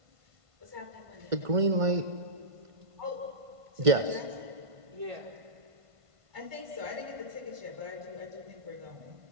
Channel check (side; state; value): left; late; 1.5 ms